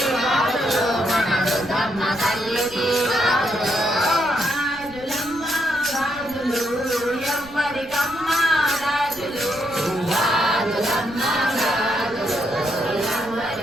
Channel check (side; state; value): right; noise; rumble, 20 dB below the sound